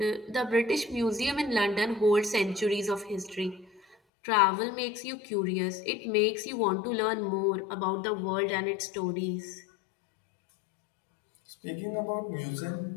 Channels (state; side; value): drops out; right; at 4.0 s